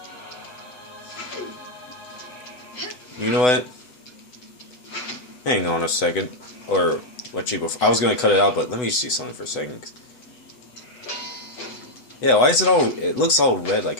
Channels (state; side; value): late; right; 8.0 ms